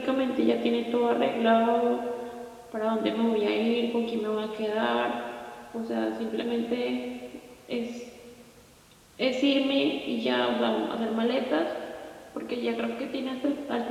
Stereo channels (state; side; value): identical; both; correlation 1.00